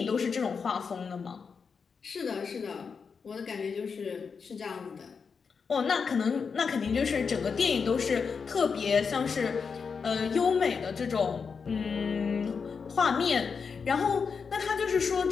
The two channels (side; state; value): right; quieter; 5.6 dB